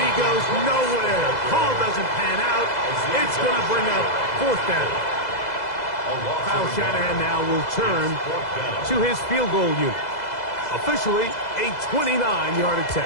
goes nowhere. Call doesn't pan out. It's going to bring up fourth down. Kyle Shanahan now will turn to his field goal unit. Officially, a 29-yard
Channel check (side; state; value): right; late; 2.0 ms